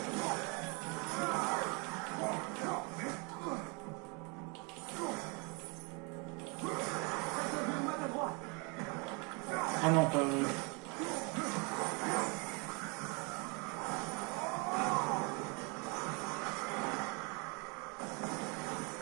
Ah non, pas...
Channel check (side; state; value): left; quieter; 32.0 dB